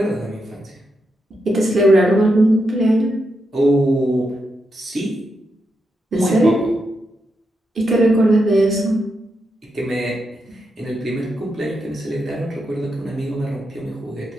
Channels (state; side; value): normal; both; correlation 0.84